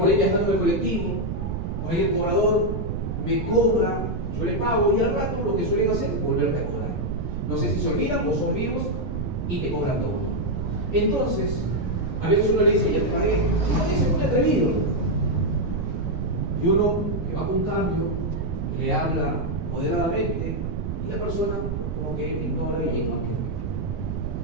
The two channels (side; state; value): right; noise; rumble, 3 dB below the sound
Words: ahí viajando en el colectivo, por ahí el cobrador me cobra, yo le pago y al rato lo que suelen hacer es volverme a cobrar. No sé si se olvidan o son vivos y te cobran todo. Entonces, a veces uno le dice, ya te pagué, y no dice muy atrevido. Y uno que va con cambio, le habla moderadamente y la persona como que ignora y no quiere.